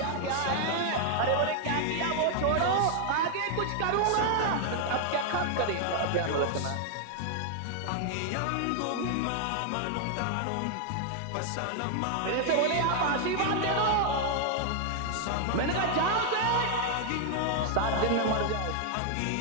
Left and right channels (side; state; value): both; different; correlation 0.00